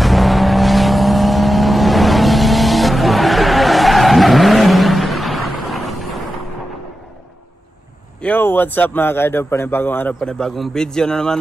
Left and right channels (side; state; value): both; normal; correlation 0.91